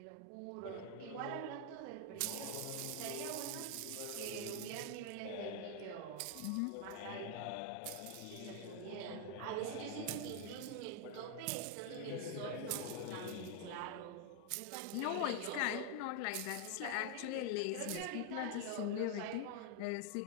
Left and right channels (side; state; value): both; different; correlation 0.00